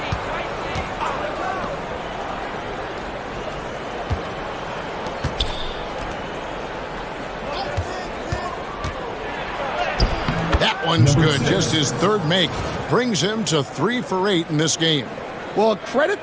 One's good. Just his 3rd make. Brings him to 3 for 8 in this game. Well,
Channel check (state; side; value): identical; both; correlation 1.00